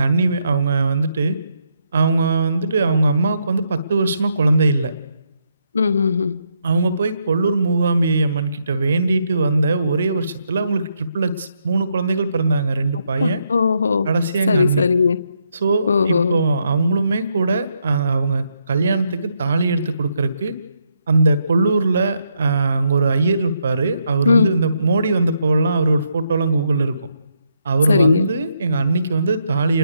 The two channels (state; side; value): inverted; both; correlation -0.77